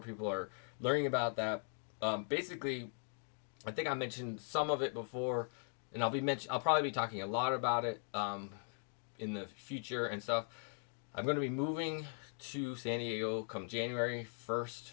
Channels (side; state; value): right; silent; 51 dB below the other